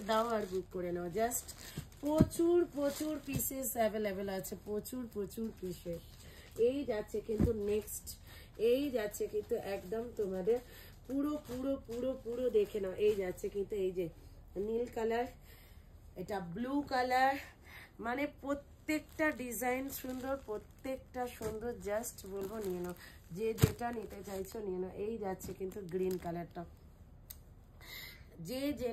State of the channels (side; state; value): both; identical; correlation 1.00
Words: দাও আর বুক করে নাও। জাস্ট প্রচুর প্রচুর পিসেস অ্যাভেলেবেল আছে, প্রচুর প্রচুর পিসেস। এই যাচ্ছে কিন্তু নেক্সট, এই যাচ্ছে কিন্তু একদম তোমাদের পুরো পুরো পুরো পুরো দেখে নাও। এই যাচ্ছে কিন্তু এই যে নীল কালার, এটা ব্লু কালার, মানে প্রত্যেকটা ডিজাইন সুন্দর, প্রত্যেকটা সুন্দর। জাস্ট বলবো নিয়ে নাও, যে যেটা নিতে চাইছো নিয়ে নাও। এই যাচ্ছে কিন্তু গ্রিন কালারটা, যে